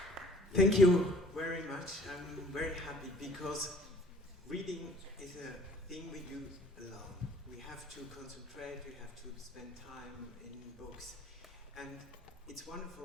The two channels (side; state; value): both; normal; correlation 0.53